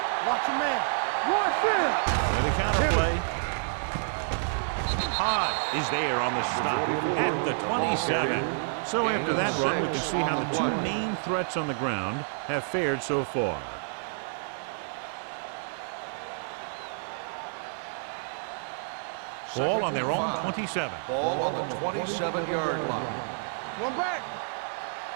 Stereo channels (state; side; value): silent; left; digital silence